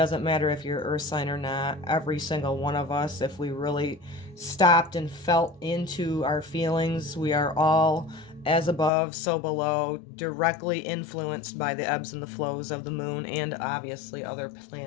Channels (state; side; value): drops out; right; at 8.9 s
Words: matter if you're earth sign or not. Every single one of us, if we really stopped and felt into our feelings, we are all as above, so below, directly influenced by the ebbs and the flows of the moon and obviously other